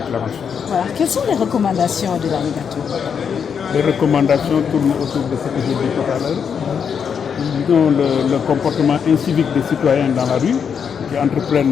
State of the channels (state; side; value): quieter; right; 7.0 dB